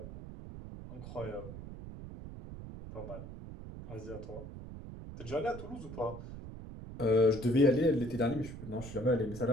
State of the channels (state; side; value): noise; right; rumble, 11 dB below the sound